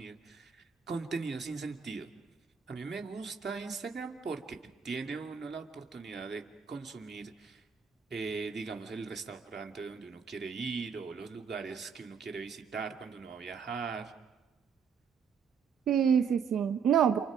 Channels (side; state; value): left; quieter; 6.7 dB